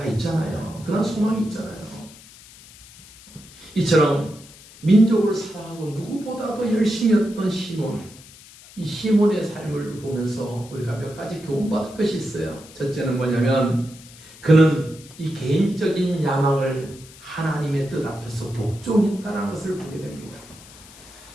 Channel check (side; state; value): left; noise; hiss, 21 dB below the sound